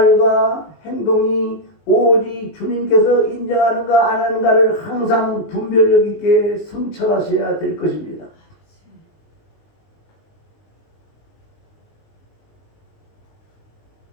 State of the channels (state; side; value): late; right; 19 ms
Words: 행동이 오직 주님께서 인정하는가 안 하는가를 항상 분별력 있게 성찰하셔야 될 것입니다.